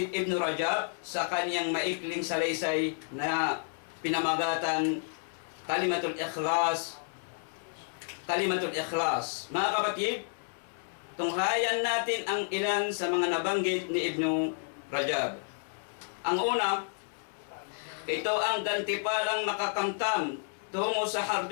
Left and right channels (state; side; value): silent; right; digital silence